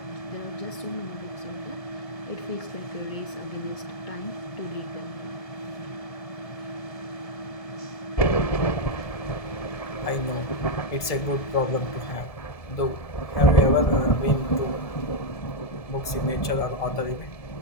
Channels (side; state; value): right; late; 1.7 ms